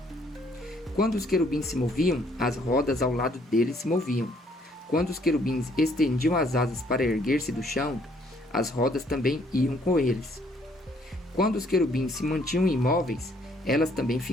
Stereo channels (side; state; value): both; normal; correlation 0.65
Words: Quando os querubins se moviam, as rodas ao lado deles se moviam. Quando os querubins estendiam as asas para erguer-se do chão, as rodas também iam com eles. Quando os querubins se mantinham imóveis, elas também